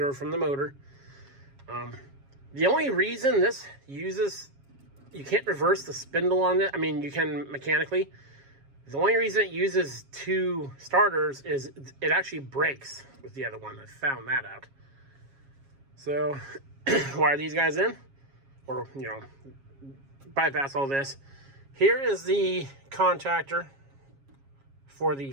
from the motor. The only reason this uses, you can't reverse the spindle on it. I mean, you can mechanically. The only reason it uses 2 starters is it actually breaks with the other one. I found that out. So wire these guys in, or, you know, bypass all this. Here is the contactor for the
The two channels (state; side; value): late; left; 7.3 ms